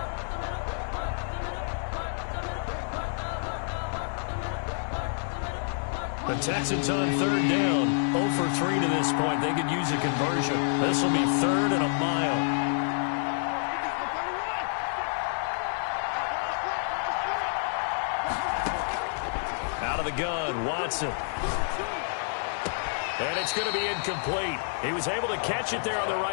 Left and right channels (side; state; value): right; silent; digital silence